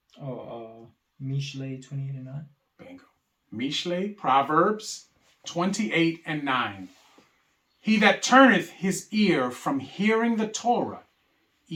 Mishle 28 and 9. Bingo. Mishle, Proverbs 28 and 9. He that turneth his ear from hearing the Torah,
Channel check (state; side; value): identical; both; correlation 1.00